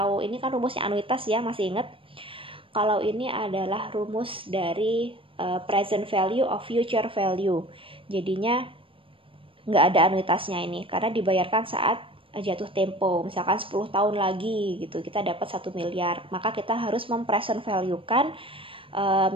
ini kan rumusnya anuitas ya, masih ingat? Kalau ini adalah rumus dari present value of future value. Jadinya nggak ada anuitasnya ini, karena dibayarkan saat jatuh tempo. Misalkan 10 tahun lagi gitu, kita dapat 1 miliar. Maka kita harus mempresent value-kan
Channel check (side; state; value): left; late; 0.26 ms